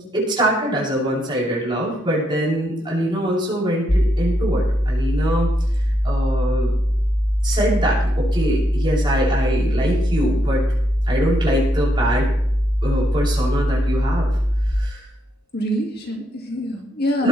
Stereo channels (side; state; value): both; normal; correlation 0.78